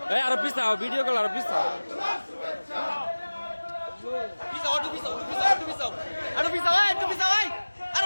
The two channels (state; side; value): inverted; both; correlation -1.00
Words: আরো পিছাও ভিডিও কল আরো পিছাও